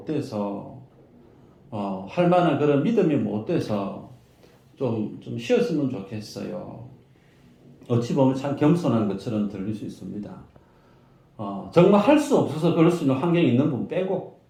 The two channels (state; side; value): identical; both; correlation 1.00